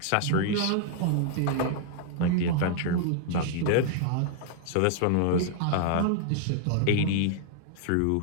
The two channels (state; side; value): different; both; correlation 0.00